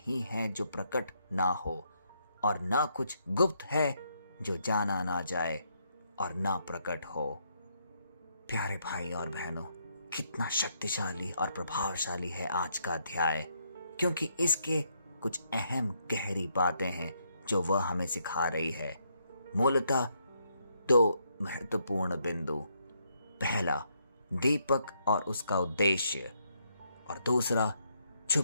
है जो प्रकट ना हो, और ना कुछ गुप्त है जो जाना ना जाए और ना प्रकट हो। प्यारे भाई और बहनों, कितना शक्तिशाली और प्रभावशाली है आज का अध्याय, क्योंकि इसके कुछ अहम गहरी बातें हैं जो वह हमें सिखा रही है। मूलतः दो महत्वपूर्ण बिंदु, पहला दीपक और उसका उद्देश्य, और दूसरा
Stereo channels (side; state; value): both; inverted; correlation -0.75